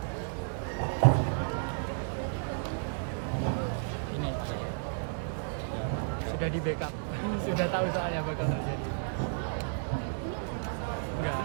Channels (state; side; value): silent; left; digital silence